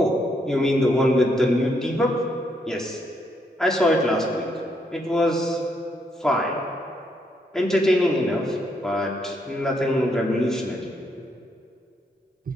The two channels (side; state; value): both; normal; correlation 0.75